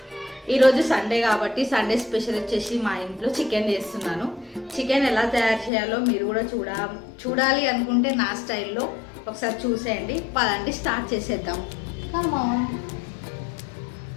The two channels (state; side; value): drops out; right; at 5.7 s